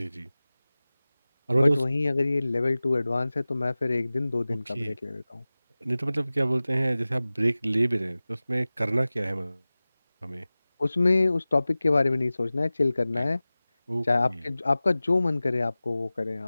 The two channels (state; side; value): inverted; both; correlation -0.97